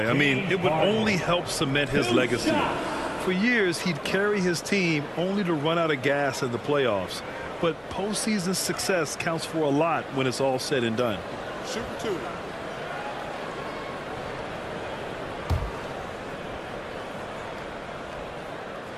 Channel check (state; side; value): identical; both; correlation 1.00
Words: I mean, it would only help cement his legacy. For years, he'd carry his team only to run out of gas in the playoffs. But postseason success counts for a lot when it's all said and done. Super 2.